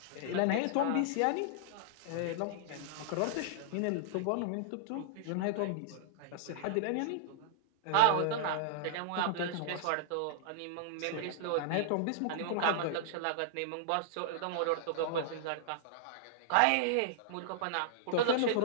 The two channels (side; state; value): both; different; correlation -0.01